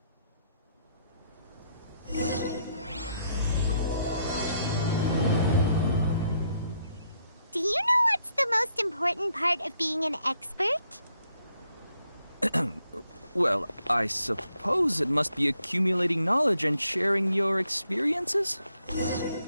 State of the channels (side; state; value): both; inverted; correlation -0.75